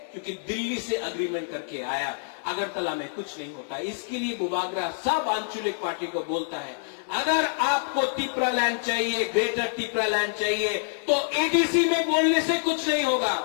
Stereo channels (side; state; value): right; silent; digital silence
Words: क्योंकि दिल्ली से अग्रीमेंट करके आया। अगरतला में कुछ नहीं होता। इसके लिए बुबागरा सब आंचलिक पार्टी को बोलता है, अगर आपको तिपरा लैंड चाहिए, ग्रेटर तिपरा लैंड चाहिए, तो एडीसी में बोलने से कुछ नहीं होगा,